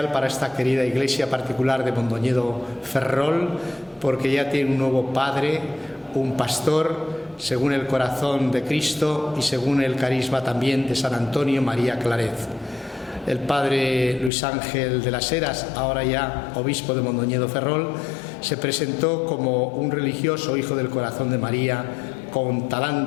para esta querida Iglesia particular de Mondoñedo Ferrol, porque ya tiene un nuevo padre, un pastor, según el corazón de Cristo y según el carisma también de San Antonio María Claret. El padre Luis Ángel de las Heras, ahora ya obispo de Mondoñedo Ferrol, se presentó como un religioso hijo del corazón de María con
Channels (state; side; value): drops out; right; at 14.3 s